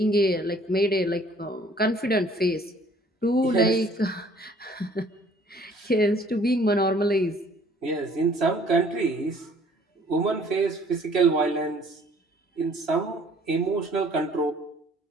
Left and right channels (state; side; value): normal; both; correlation 0.57